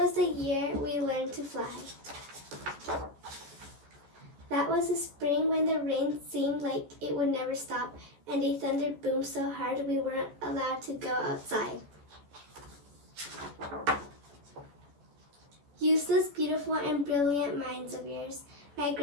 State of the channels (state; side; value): late; left; 14 ms